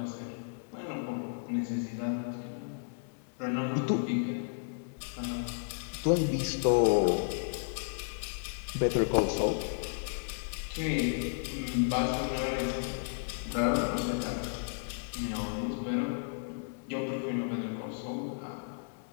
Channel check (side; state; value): right; silent; digital silence